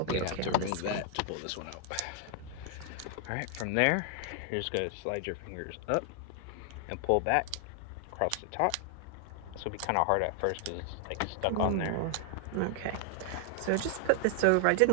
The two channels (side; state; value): both; different; correlation 0.00